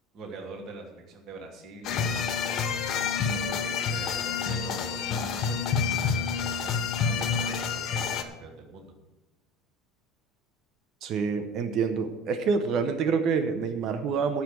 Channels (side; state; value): both; normal; correlation 0.35